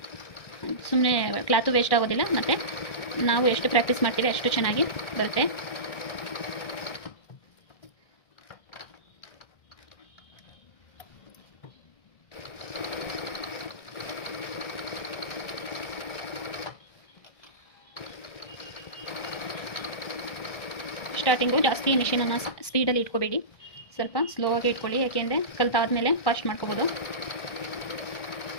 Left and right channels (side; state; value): right; late; 1.6 ms